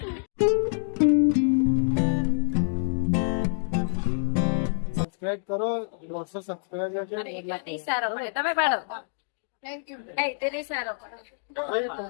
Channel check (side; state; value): right; silent; digital silence